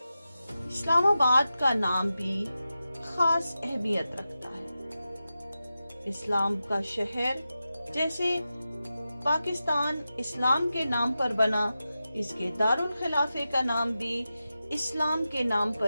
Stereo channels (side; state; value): both; inverted; correlation -0.92